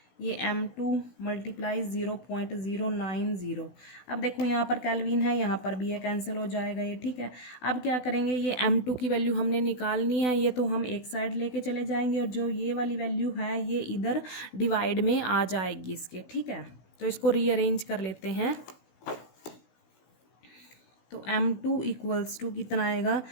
ये M2 मल्टीप्लाई 0.090। अब देखो यहाँ पर केल्विन है, यहाँ पर भी ये कैंसिल हो जाएगा ये, ठीक है। अब क्या करेंगे, ये M2 की वैल्यू हमने निकालनी है, ये तो हम एक साइड लेके चले जाएंगे और जो ये वाली वैल्यू है ये इधर डिवाइड में आ जाएगी इसके, ठीक है। तो इसको रीअरेंज कर लेते हैं। तो M2 इक्वल्स टू कितना आएगा,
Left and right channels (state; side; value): late; right; 16 ms